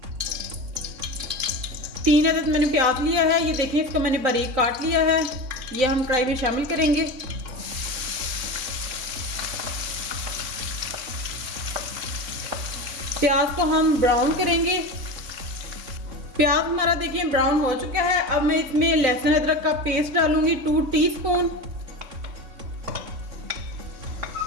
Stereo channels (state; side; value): late; left; 3.6 ms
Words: 3 अदद मैंने प्याज लिया है, ये देखें इसको मैंने बारीक काट लिया है, ये हम कढ़ाई में शामिल करेंगे। प्याज को हम ब्राउन करेंगे। प्याज हमारा देखिए ब्राउन हो चुका है। अब मैं इसमें लहसुन अदरक का पेस्ट डालूंगी 2 टीस्पून।